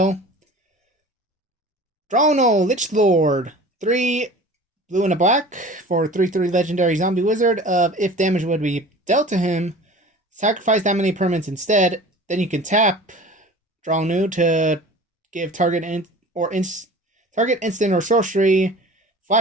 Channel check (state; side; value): normal; both; correlation 0.41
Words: Drono, Lich Lord. 3 blue and a black for 3/3 legendary zombie wizard of if damage would be dealt to him, sacrifice that many permanents instead. Then you can tap draw new to give target instant or sorcery